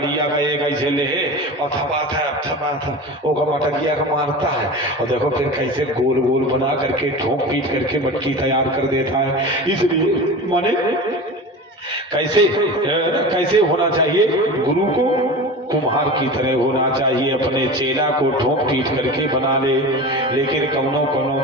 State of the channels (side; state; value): both; normal; correlation 0.31